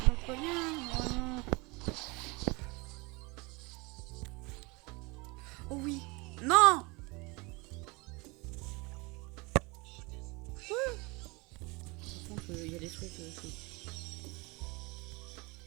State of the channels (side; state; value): left; quieter; 26.5 dB